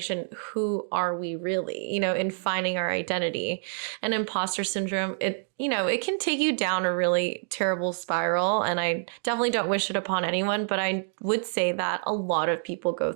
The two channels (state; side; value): silent; left; digital silence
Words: Who are we really, in finding our identity? And imposter syndrome, it can take you down a really terrible spiral. And I definitely don't wish it upon anyone, but I would say that a lot of people go